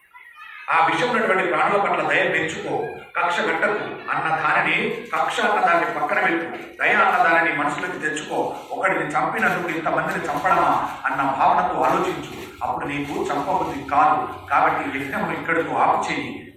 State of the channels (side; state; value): both; identical; correlation 1.00